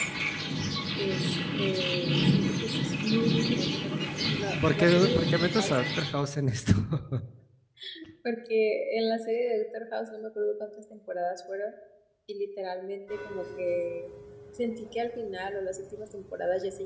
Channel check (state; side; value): identical; both; correlation 1.00